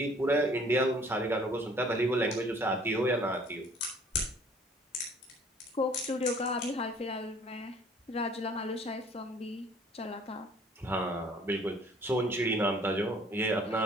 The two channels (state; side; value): normal; both; correlation 0.55